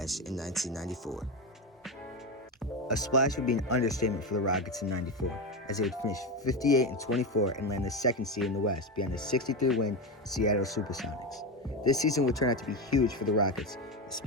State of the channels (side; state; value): both; normal; correlation 0.16